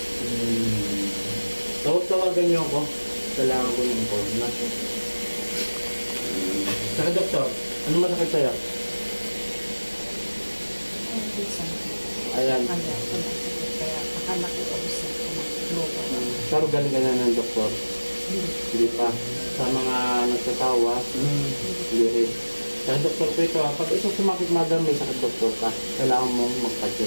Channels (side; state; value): both; inverted; correlation -1.00